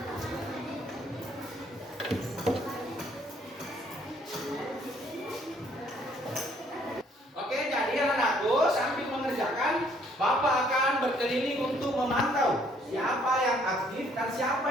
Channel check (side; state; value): both; normal; correlation 0.64